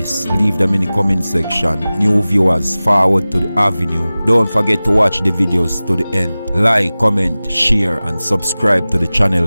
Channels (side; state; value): both; inverted; correlation -0.98